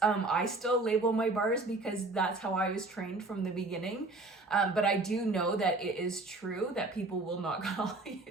I still label my bars because that's how I was trained from the beginning. But I do know that it is true that people will not call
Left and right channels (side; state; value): left; quieter; 3.1 dB